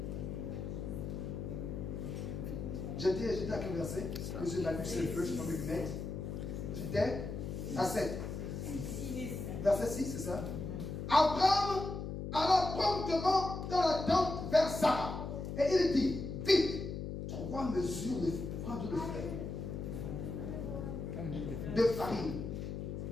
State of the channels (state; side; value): noise; left; hum, 5 dB below the sound